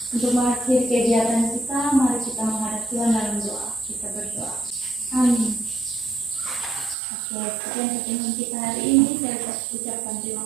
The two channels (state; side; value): drops out; left; at 7.0 s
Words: Untuk mengakhiri kegiatan kita, mari kita menghadap Tuhan dalam doa. Kita berdoa. Amin. Oke, sekian pertemuan kita hari ini. Saya ucapkan